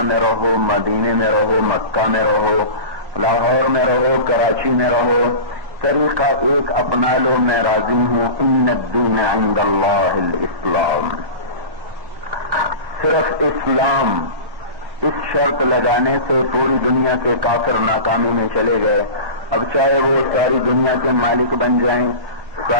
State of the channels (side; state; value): left; late; 1.2 ms